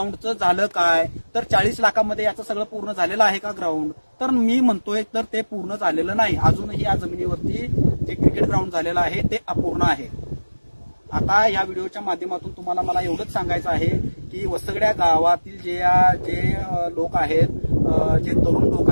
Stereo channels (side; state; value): both; inverted; correlation -1.00